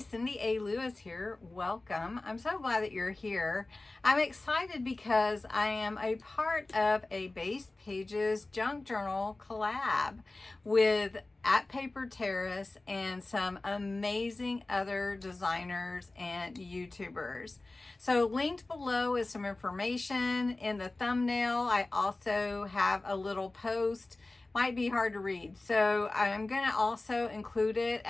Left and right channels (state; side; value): quieter; right; 3.0 dB